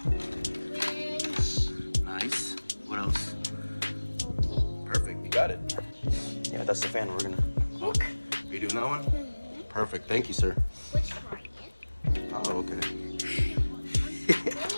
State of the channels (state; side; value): inverted; both; correlation -1.00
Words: Nice. What else? Perfect. You got it. Yeah, that's the fan. We're gonna. Look. You doing that one? Perfect. Thank you, sir. Which one? Oh, okay.